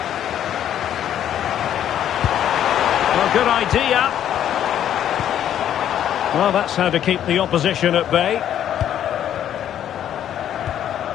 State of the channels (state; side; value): quieter; right; 10.5 dB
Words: Well, good idea. Well, that's how to keep the opposition at bay.